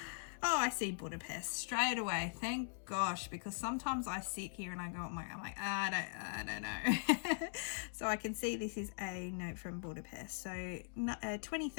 I see Budapest straight away, thank gosh, because sometimes I sit here and I go, I'm like I don't know. So I can see this is a note from Budapest, so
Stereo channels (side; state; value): right; silent; digital silence